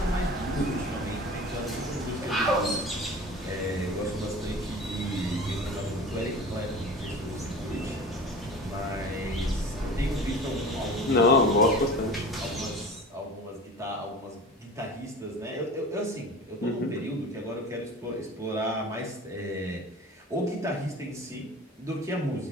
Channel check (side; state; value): both; normal; correlation 0.38